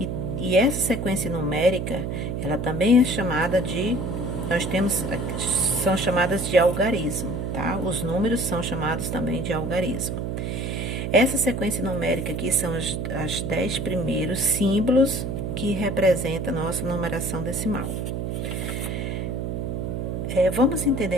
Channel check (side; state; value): right; noise; hum, 3 dB below the sound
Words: e essa sequência numérica, ela também é chamada de são chamadas de algarismo, tá? Os números são chamados também de algarismo. Essa sequência numérica aqui são as 10 primeiros símbolos que representam a nossa numeração decimal. Vamos